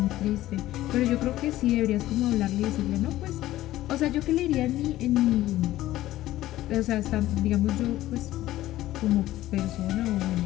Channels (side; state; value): right; quieter; 15.1 dB